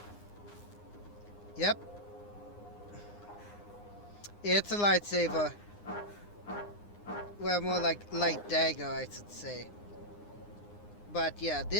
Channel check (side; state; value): right; late; 9.8 ms